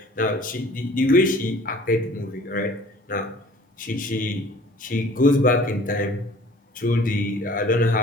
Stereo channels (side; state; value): both; normal; correlation 0.50